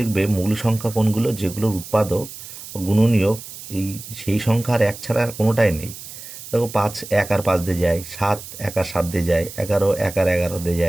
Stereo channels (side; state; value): right; noise; hiss, 13 dB below the sound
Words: মৌলিক সংখ্যা কোনগুলো, যেগুলোর উৎপাদক ও গুণনীয়ক এই সেই সংখ্যা আর 1 ছাড়া আর কোনোটাই নেই। দেখো 5 1 আর 5 দিয়ে যায়, 7 1 আর 7 দিয়ে যায়, 11 1 আর 11 দিয়ে